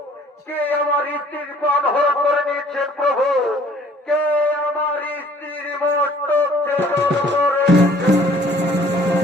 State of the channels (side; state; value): both; normal; correlation 0.56